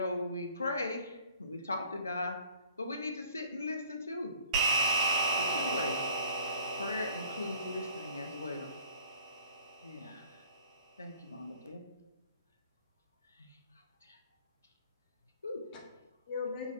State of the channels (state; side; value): inverted; both; correlation -0.53